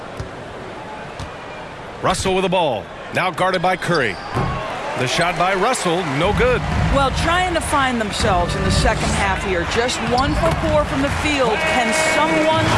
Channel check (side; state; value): both; identical; correlation 1.00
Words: Russell with the ball. Now guarded by Curry. The shot by Russell, no good. Well, trying to find themselves in the second half here. Just 1 for 4 from the field. Can someone